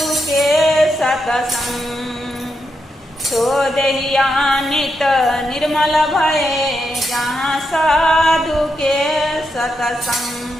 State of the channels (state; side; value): normal; both; correlation 0.83